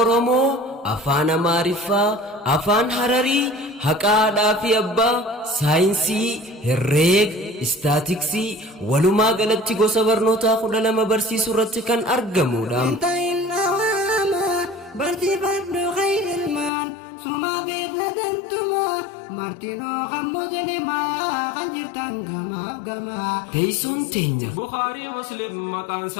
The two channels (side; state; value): right; drops out; at 16.7 s